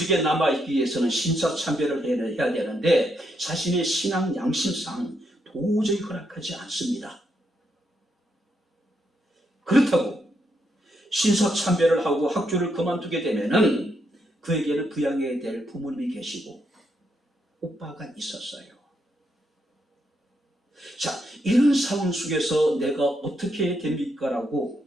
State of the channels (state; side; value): normal; both; correlation 0.78